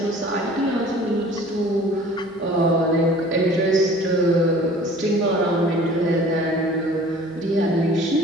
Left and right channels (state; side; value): normal; both; correlation 0.48